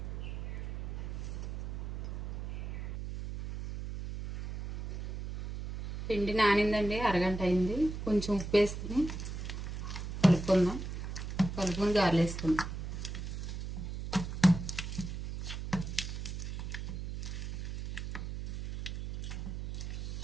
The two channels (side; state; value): right; noise; hum, 6 dB below the sound